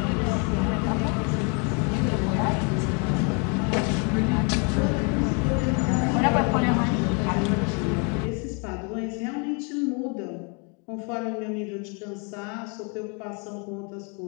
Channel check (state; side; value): quieter; right; 35.3 dB